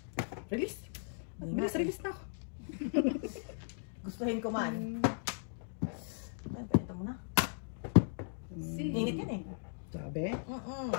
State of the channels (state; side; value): silent; right; digital silence